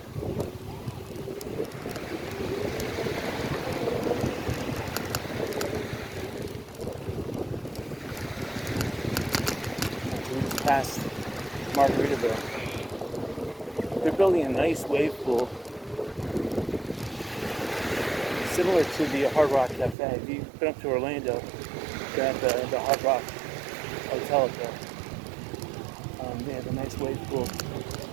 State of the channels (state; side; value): drops out; left; at 20.0 s